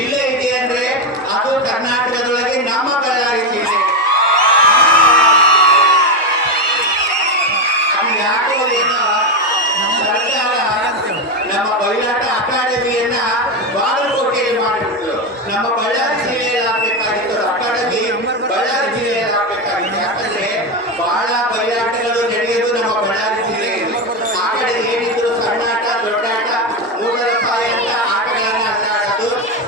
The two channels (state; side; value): normal; both; correlation 0.11